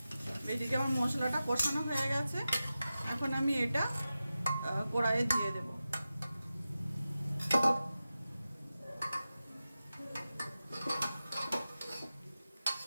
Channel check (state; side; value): inverted; both; correlation -0.93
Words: এদিকে আমার মশলাটা কষানো হয়ে গেছে, এখন আমি এটা কড়াইয়ে দিয়ে দেব।